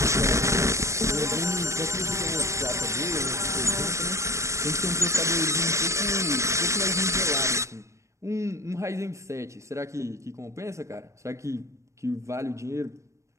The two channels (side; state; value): left; late; 0.14 ms